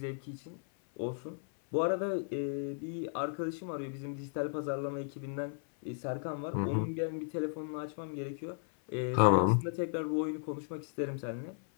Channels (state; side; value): silent; right; 54 dB below the other